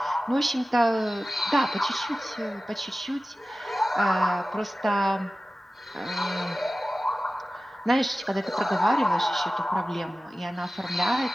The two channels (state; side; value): normal; both; correlation 0.96